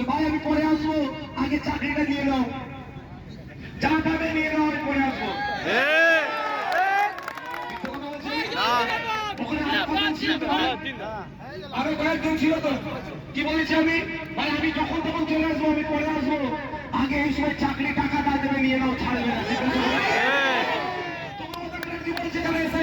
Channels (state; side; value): identical; both; correlation 1.00